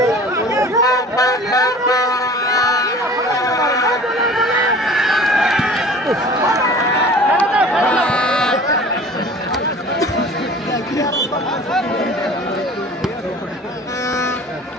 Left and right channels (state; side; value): normal; both; correlation 0.44